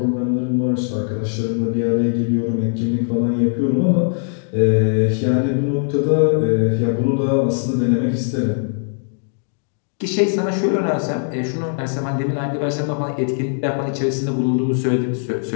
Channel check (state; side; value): silent; right; digital silence